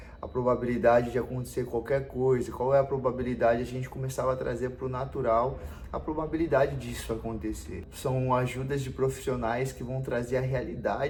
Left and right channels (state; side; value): identical; both; correlation 1.00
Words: a probabilidade de acontecer qualquer coisa? Qual é a probabilidade? A gente começava a trazer para o natural a probabilidade disso acontecer. São ajudas de profissionais que vão trazer a